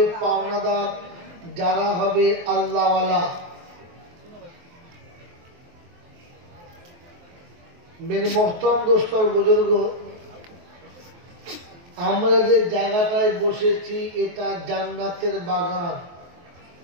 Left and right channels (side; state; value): left; late; 23 ms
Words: পাওনাদার যারা হবে আল্লাহওয়ালা। মেরে মোহতরম দোস্তর বুজুর্গ, আমরা যে জায়গাটায় বসেছি এটা জান্নাতের বাগান।